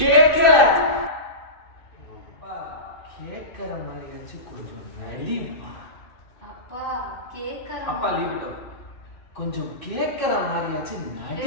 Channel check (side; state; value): right; late; 2.6 ms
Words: அப்பா கேக்குற மாதிரியாச்சு கொஞ்சம் நடிப்பா. அப்பா கேக்குற அப்பா லீவ் இட் அவுட். கொஞ்சம் கேக்குற மாதிரியாச்சு